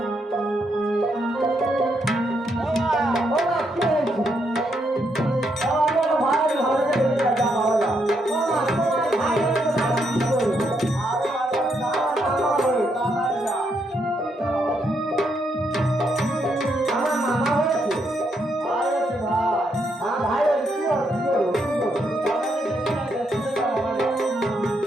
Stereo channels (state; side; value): normal; both; correlation 0.78